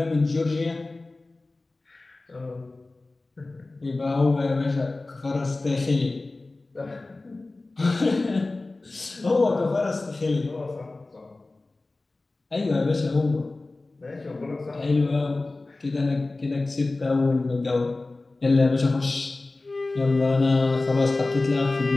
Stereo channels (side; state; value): right; quieter; 3.2 dB